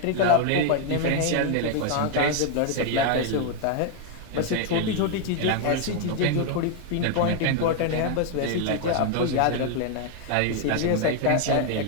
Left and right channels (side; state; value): both; different; correlation 0.00